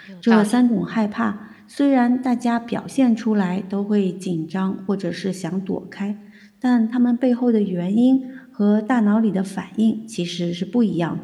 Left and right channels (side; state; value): both; identical; correlation 1.00